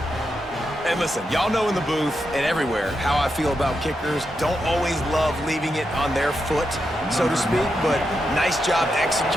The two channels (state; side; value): normal; both; correlation 0.85